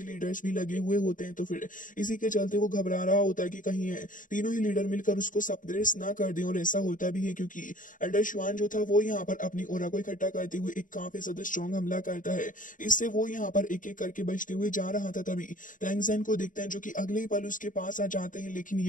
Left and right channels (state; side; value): late; right; 0.38 ms